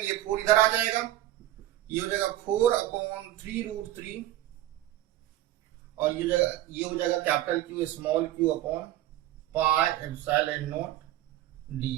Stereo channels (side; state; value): left; quieter; 14.4 dB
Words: ये 4 इधर आ जाएगा, ये हो जाएगा 4 अपॉन 3√3 और ये हो जाएगा capital Q small Q upon pi epsilon not